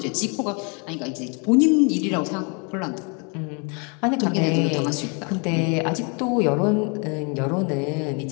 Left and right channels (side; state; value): right; quieter; 34.4 dB